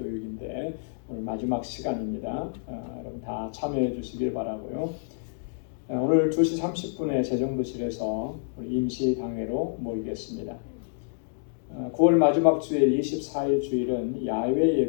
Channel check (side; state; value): right; silent; digital silence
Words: 오늘 마지막 시간입니다. 여러분 다 참여해 주시길 바라고요. 오늘 2시 30분에 재정부실에서 우리 임시당회로 모이겠습니다. 9월 마지막 주일 24일 주일은 야외